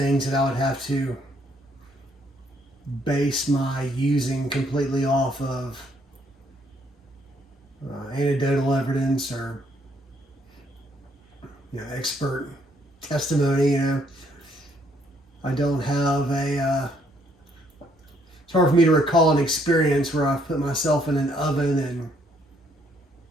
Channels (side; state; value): both; normal; correlation 0.68